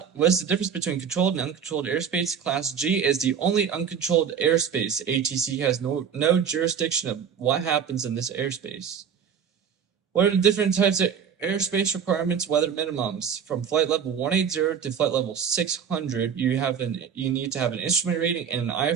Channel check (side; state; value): left; quieter; 7.5 dB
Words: difference between controlled and uncontrolled airspace? Class G is the only uncontrolled airspace. ATC has no jurisdiction of what happens in this airspace. What are the different types of airspace requirements, weather minimums? From flight level 180 to flight level 600, you need to have an instrument rating and an